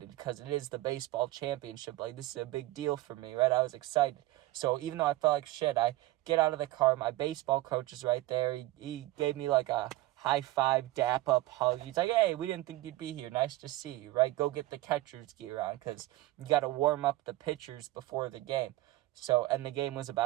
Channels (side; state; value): left; quieter; 17.7 dB